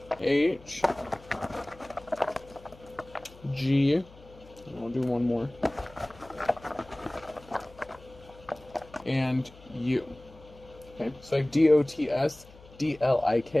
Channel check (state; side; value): noise; left; hum, 22 dB below the sound